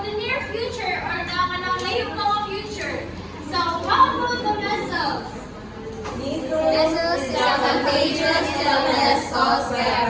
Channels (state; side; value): identical; both; correlation 1.00